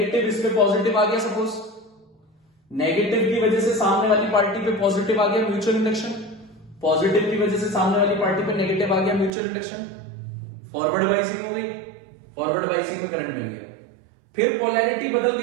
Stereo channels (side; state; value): left; drops out; at 9.3 s